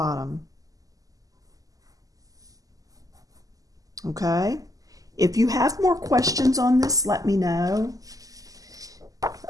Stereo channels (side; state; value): left; late; 0.17 ms